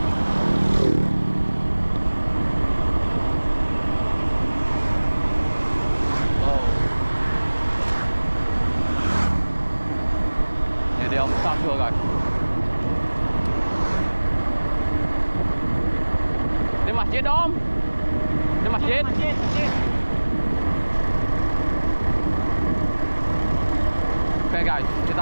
Oh, ini dia Om Samsu guys. Di masjid Om, di masjid. Masjid. Oke guys, kita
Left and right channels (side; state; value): both; inverted; correlation -1.00